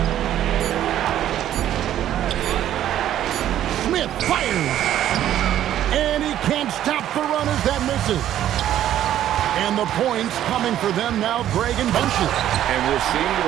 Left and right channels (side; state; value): left; quieter; 11.8 dB